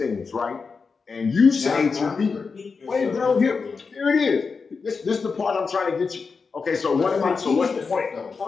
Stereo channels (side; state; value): right; quieter; 4.9 dB